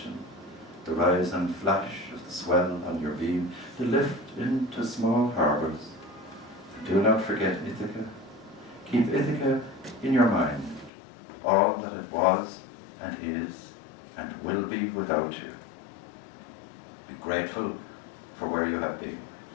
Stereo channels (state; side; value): drops out; right; at 10.9 s